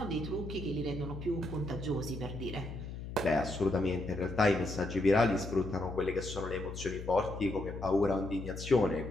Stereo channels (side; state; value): left; noise; hum, 9 dB below the sound